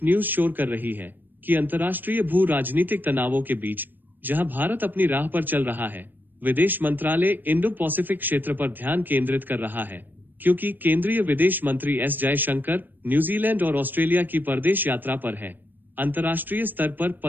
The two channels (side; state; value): left; late; 0.091 ms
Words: न्यूज शोर कर रही है कि अंतर्राष्ट्रीय भू राजनीतिक तनावों के बीच जहां भारत अपनी राह पर चल रहा है, विदेश मंत्रालय इंडो पैसिफिक क्षेत्र पर ध्यान केंद्रित कर रहा है, क्योंकि केंद्रीय विदेश मंत्री एस जयशंकर न्यूजीलैंड और ऑस्ट्रेलिया की परदेश यात्रा पर है। अंतर्राष्ट्रीय स्तर पर